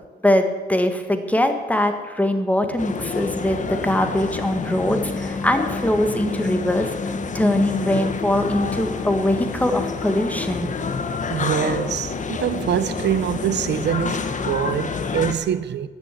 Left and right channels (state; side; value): normal; both; correlation 0.67